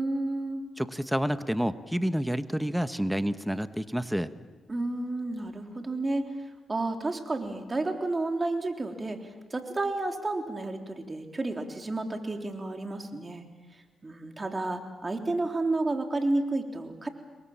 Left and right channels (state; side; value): normal; both; correlation 0.96